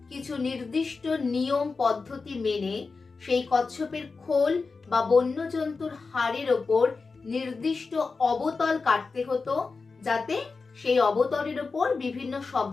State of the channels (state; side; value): quieter; right; 4.4 dB